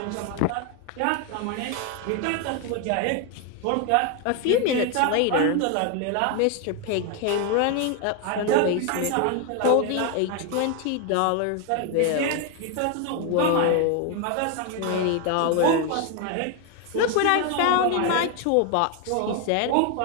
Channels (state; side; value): different; both; correlation 0.01